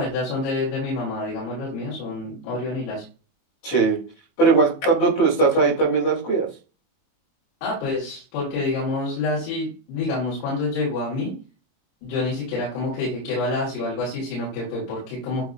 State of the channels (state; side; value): late; right; 22 ms